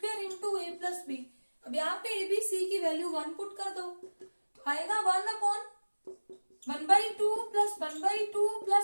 into ए प्लस बी। अब यहाँ पे ए बी सी की वैल्यू 1 पुट कर दो तो आएगा 1 अपॉन 1/2 प्लस 1/2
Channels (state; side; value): inverted; both; correlation -1.00